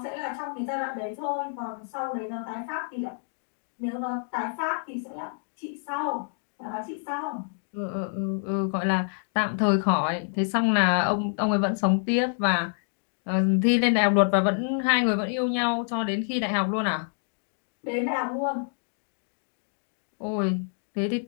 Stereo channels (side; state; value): right; silent; 60 dB below the other